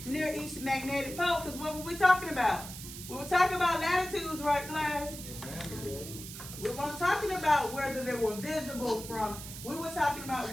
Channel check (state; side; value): noise; right; hiss, 11 dB below the sound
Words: near each magnetic pole. Because what were we talking about? We were talking about latitudes, right, class? We weren't talking about whether they were visible from. We were talking about